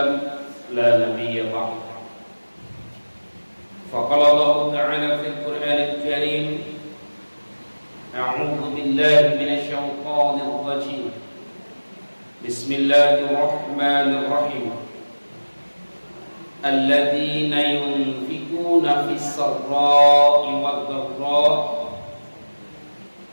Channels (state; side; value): inverted; both; correlation -1.00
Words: لا نبي بعده. فقال الله تعالى في القرآن الكريم أعوذ بالله من الشيطان الرجيم بسم الله الرحمن الرحيم الذين ينفقون في السراء والضراء